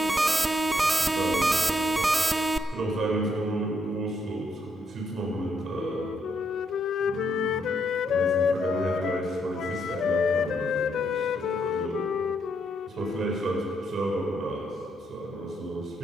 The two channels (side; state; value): both; normal; correlation 0.76